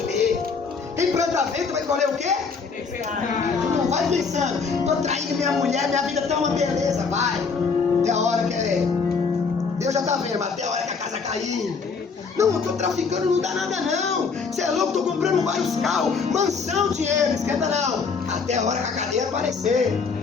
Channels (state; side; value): quieter; right; 5.2 dB